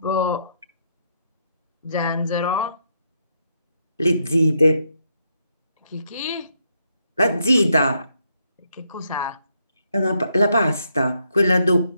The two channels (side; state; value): both; inverted; correlation -0.77